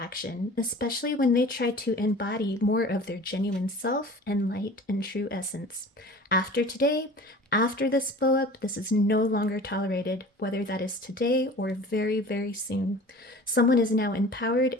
especially when they tried to embody more of their genuine self and light and true essence. After today, after this blow up, this is no longer tolerated, whether that is today or very, very soon. Someone is now empowered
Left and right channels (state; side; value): normal; both; correlation 0.41